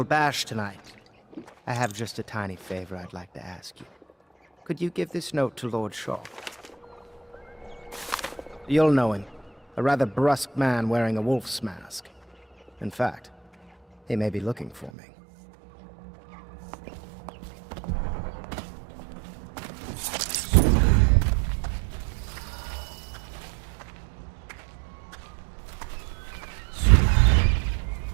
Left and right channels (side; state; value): left; drops out; at 14.9 s